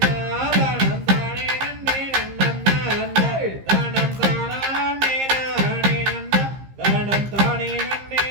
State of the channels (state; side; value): late; left; 15 ms